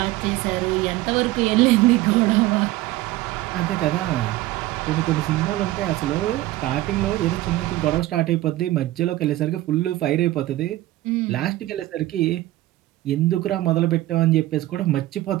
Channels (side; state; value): left; quieter; 16.6 dB